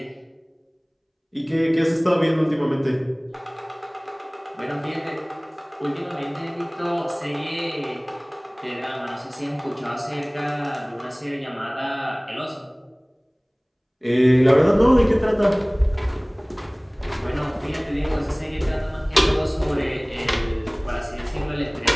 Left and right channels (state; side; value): identical; both; correlation 1.00